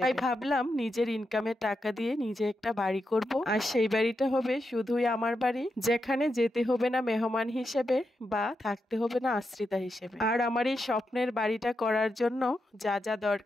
তাই ভাবলাম নিজের ইনকামের টাকা দিয়ে নিজে একটা বাড়ি করব, আর সেই বাড়িটা হবে শুধুই আমার বাড়ি, যেখানে যেতে হবে না মেহমান হিসেবে বা থাকতে হবে না আশ্রিতা হিসেবে। আর আমার এই স্বপ্নের বাড়িটা করার জন্য যা যা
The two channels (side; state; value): both; normal; correlation 0.86